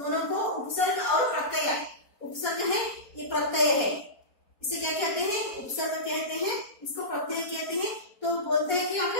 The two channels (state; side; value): late; right; 4.2 ms